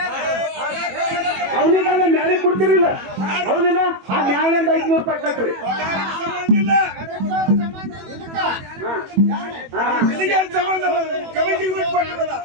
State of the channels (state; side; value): late; left; 21 ms